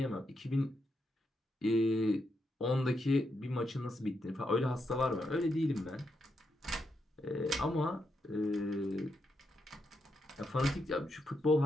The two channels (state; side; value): normal; both; correlation 0.82